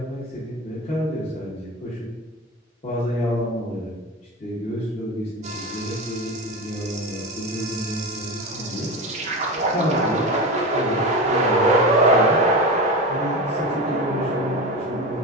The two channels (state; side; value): normal; both; correlation 0.24